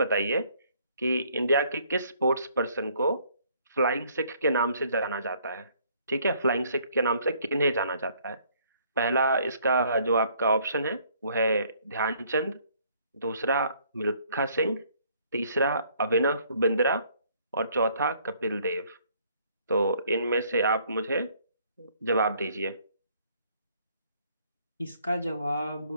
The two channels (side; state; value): both; inverted; correlation -0.63